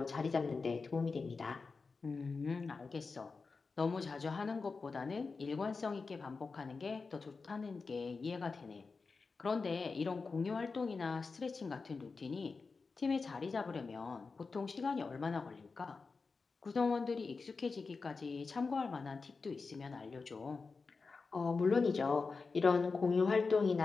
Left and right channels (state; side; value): quieter; right; 4.4 dB